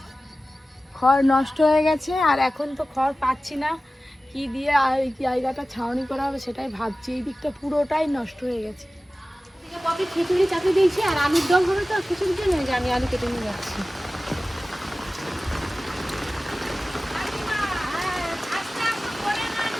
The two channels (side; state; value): both; normal; correlation 0.96